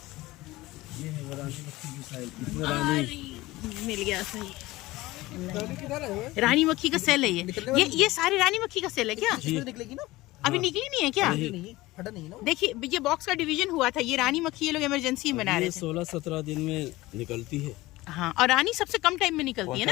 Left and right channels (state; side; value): quieter; right; 19.1 dB